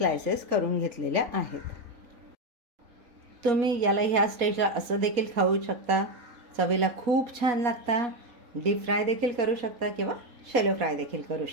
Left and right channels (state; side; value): late; left; 4.2 ms